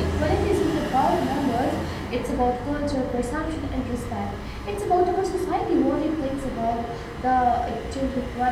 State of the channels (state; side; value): identical; both; correlation 1.00